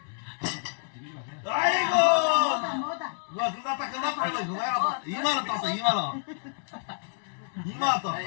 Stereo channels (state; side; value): silent; right; 59 dB below the other